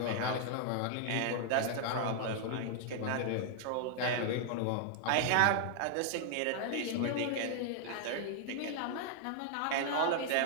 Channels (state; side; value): different; both; correlation 0.00